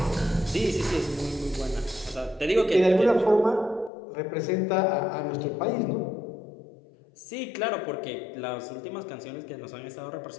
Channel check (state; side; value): drops out; right; at 3.9 s